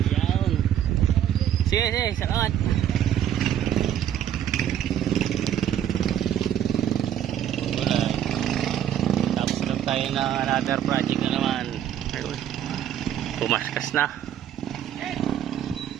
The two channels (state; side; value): quieter; left; 10.4 dB